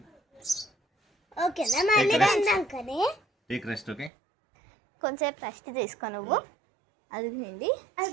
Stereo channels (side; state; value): left; drops out; at 4.1 s